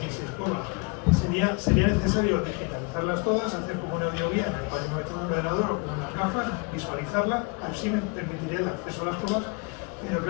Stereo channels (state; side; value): quieter; right; 30.9 dB